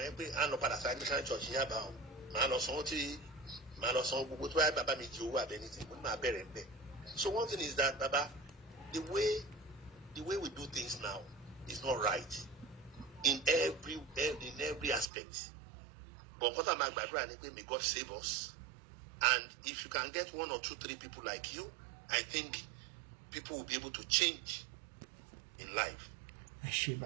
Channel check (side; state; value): left; drops out; at 15.1 s